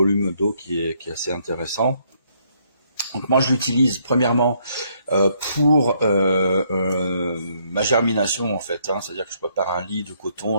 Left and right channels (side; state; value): both; inverted; correlation -0.70